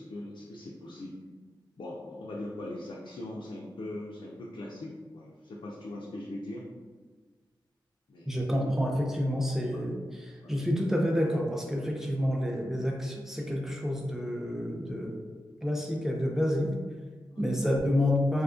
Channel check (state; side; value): normal; both; correlation 0.90